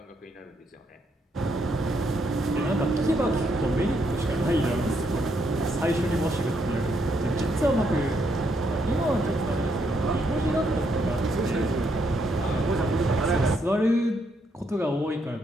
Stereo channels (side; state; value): both; normal; correlation 0.75